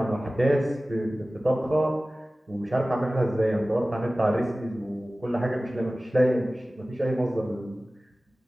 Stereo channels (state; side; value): normal; both; correlation 0.97